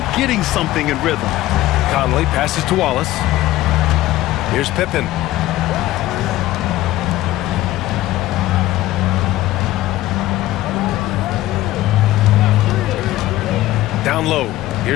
getting something in rhythm. Conley passes to Wallace. Here's Pippen. Down low.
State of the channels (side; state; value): right; quieter; 15.9 dB